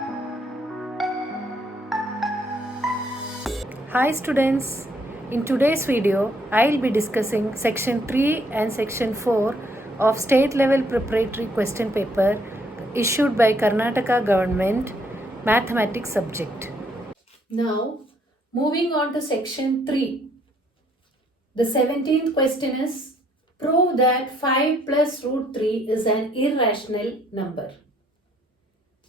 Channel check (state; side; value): normal; both; correlation 0.68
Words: students, in today's video I'll be discussing section 3 and section 4 of State Level Preparatory Question Paper issued by Karnataka Government Mathematics subject. Now moving on to section 3. The 17th question is, prove that 5 plus root 3 is an irrational number.